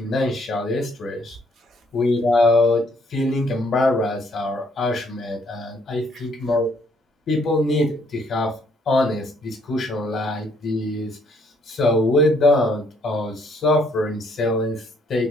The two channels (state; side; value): normal; both; correlation 0.67